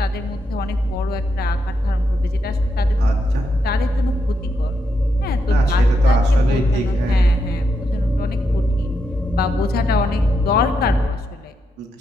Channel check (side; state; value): both; normal; correlation 0.82